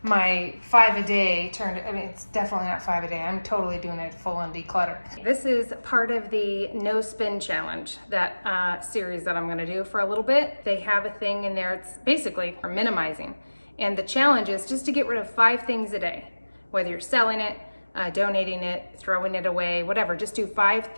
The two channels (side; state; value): both; inverted; correlation -1.00